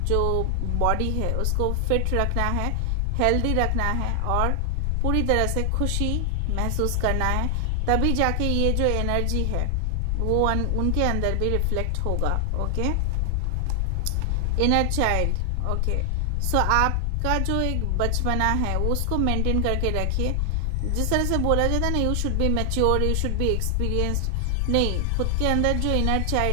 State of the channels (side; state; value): both; different; correlation 0.00